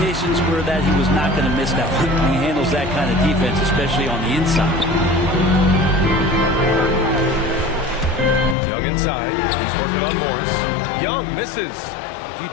were that he was not going to miss that one. He handles that kind of defense, especially on the inside. Young inside. He's working on Morris. Young misses. If you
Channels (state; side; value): drops out; right; at 8.6 s